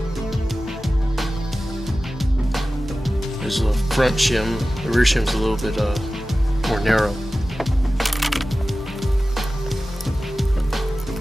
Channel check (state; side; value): normal; both; correlation 0.95